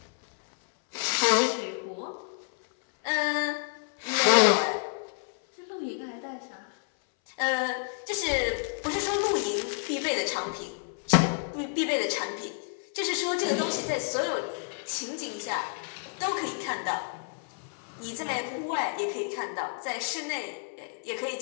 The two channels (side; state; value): right; silent; 58 dB below the other